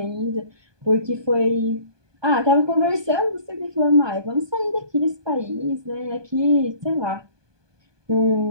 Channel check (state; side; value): late; left; 1.2 ms